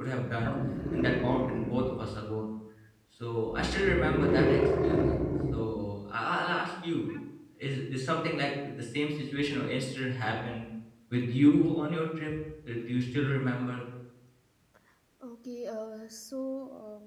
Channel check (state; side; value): identical; both; correlation 1.00